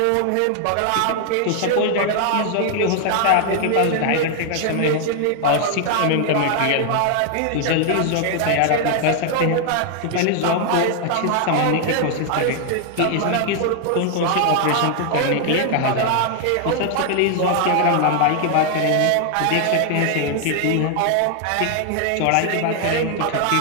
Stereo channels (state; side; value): different; both; correlation 0.00